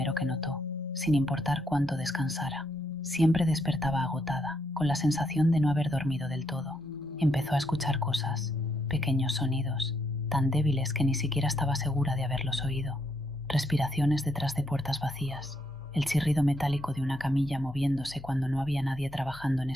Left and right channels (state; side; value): normal; both; correlation 0.76